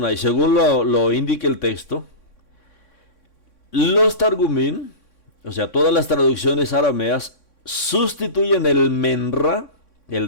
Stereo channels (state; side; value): late; right; 3.6 ms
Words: según lo indica el texto. Los Targumín, o sea, todas las traducciones arameas, sustituyen el menra,